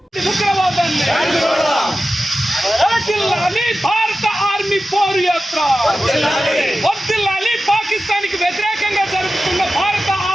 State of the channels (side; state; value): both; normal; correlation 0.94